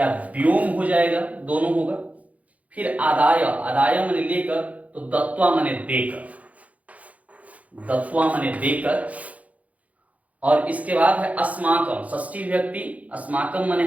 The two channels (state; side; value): late; left; 0.069 ms